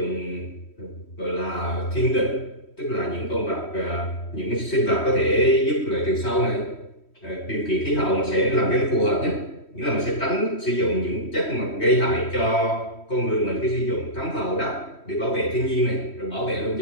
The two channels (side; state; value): right; late; 3.1 ms